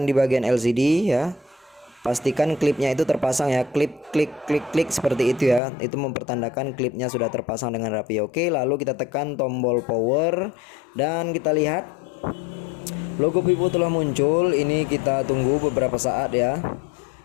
di bagian LCD ya. Pastikan klipnya itu terpasang ya, klip klik klik klik seperti itu ya. Itu mempertandakan klipnya sudah terpasang dengan rapi. Oke, lalu kita tekan tombol power dan kita lihat logo Vivo telah muncul. Ini kita tunggu beberapa saat ya.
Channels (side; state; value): right; drops out; at 5.6 s